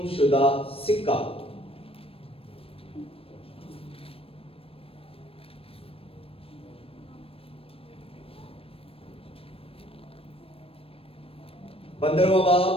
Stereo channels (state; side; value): late; right; 0.28 ms